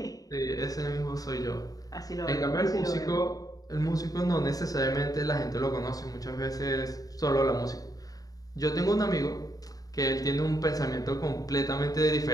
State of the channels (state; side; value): late; right; 0.18 ms